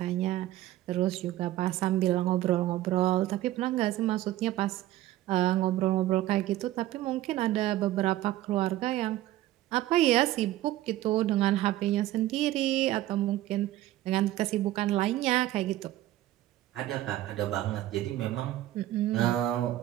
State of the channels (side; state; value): left; quieter; 14.8 dB